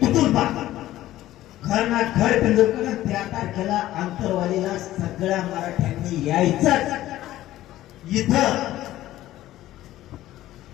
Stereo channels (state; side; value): quieter; right; 14.7 dB